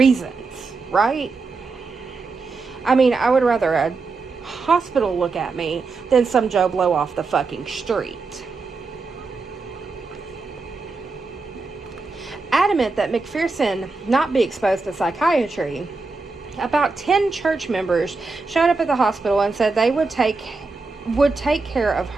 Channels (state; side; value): quieter; left; 4.0 dB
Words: right? I mean, I would rather a hospital look at me than some Joe Blow off the fucking street. Adamant that McPherson not be exposed to psychiatry, about 10 church members showed up at the hospital and said they would take care of